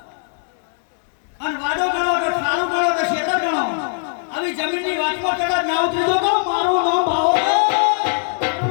અને વાડો ગણો કે ખાલું ગણો કે શેતર ગણો આવી જમીનની વાતમાં કદાચ ના ઉતરી દો તો મારું નામ ભાવો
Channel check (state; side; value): silent; right; 66 dB below the other